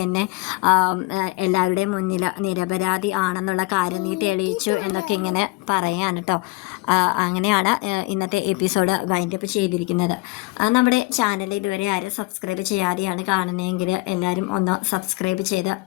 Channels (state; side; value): quieter; right; 22.8 dB